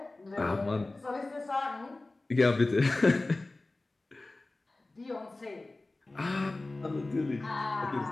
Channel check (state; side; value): quieter; right; 3.0 dB